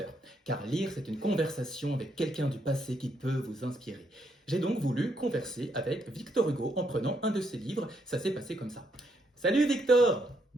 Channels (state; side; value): normal; both; correlation 0.75